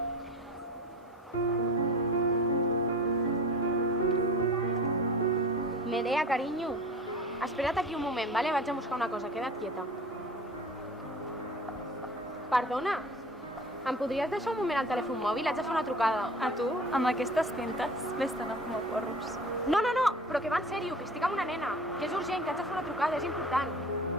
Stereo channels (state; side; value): normal; both; correlation 0.39